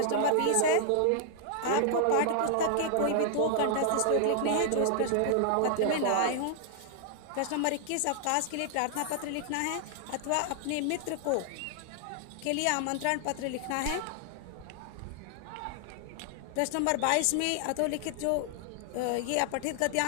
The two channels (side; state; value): both; different; correlation 0.00